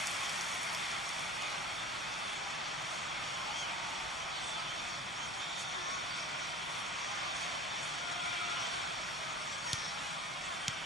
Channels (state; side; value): normal; both; correlation 0.37